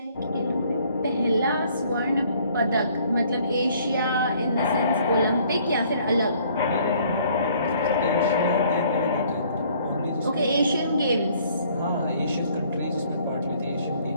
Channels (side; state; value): both; inverted; correlation -0.60